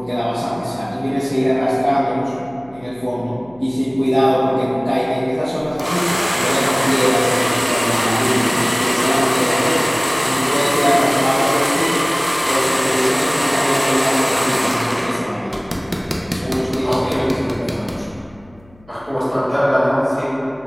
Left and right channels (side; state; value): left; noise; hum, 27 dB below the sound